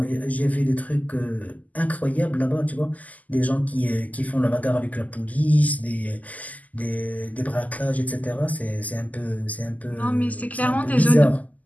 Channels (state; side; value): late; right; 0.077 ms